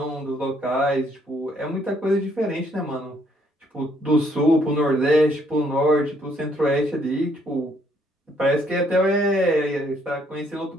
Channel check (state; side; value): normal; both; correlation 0.68